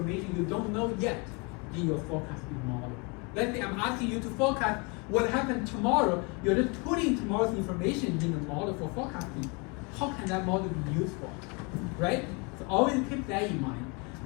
you don't know yet in your forecasting model. Let's say I'm asking you to forecast what happened tomorrow. You're just putting tomorrow's information in the model for forecasting. How can that model be useful, right? So always keep that in mind.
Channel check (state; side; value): quieter; right; 31.1 dB